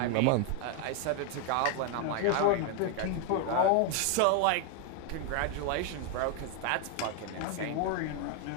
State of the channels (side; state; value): both; different; correlation 0.01